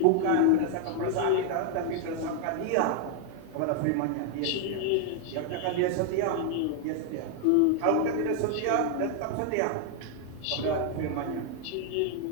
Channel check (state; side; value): different; both; correlation 0.00